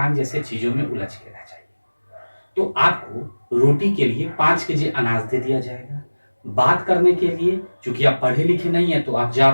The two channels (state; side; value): inverted; both; correlation -1.00